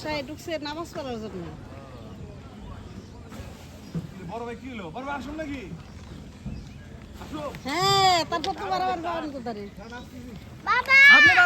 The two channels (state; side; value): identical; both; correlation 1.00